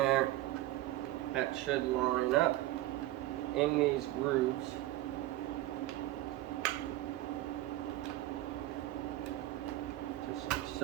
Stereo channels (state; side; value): quieter; left; 15.8 dB